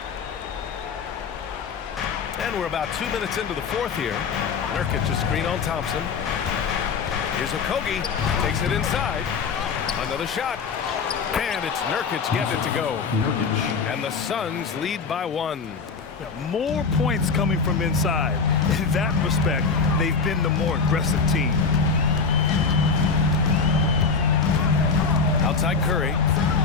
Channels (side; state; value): right; quieter; 5.2 dB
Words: And we're about 2 minutes into the fourth here. Nurkic a screen on Thompson. Here's Okogie. Takes it inside. Another shot. And it's Nurkic getting it to go. And the Suns lead by 1. More points coming from inside. In that respect, they've been the more aggressive team. Outside Curry.